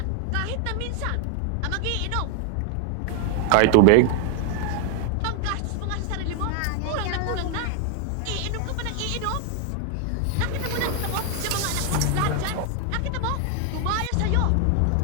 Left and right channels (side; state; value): both; different; correlation 0.00